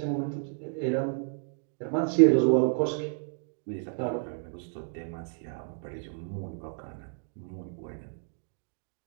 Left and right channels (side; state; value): left; silent; digital silence